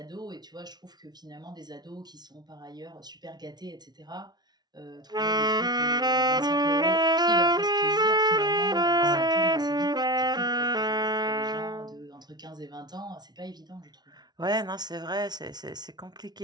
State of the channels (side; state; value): left; late; 0.19 ms